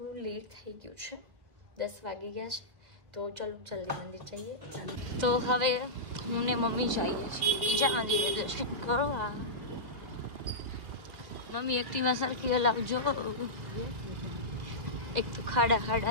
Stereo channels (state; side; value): late; left; 1.9 ms